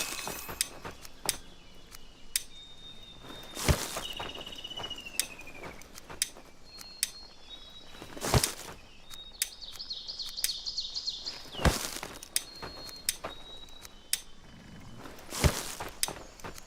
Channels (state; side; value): identical; both; correlation 1.00